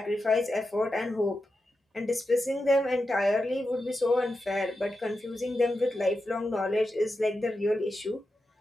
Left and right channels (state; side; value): normal; both; correlation 0.89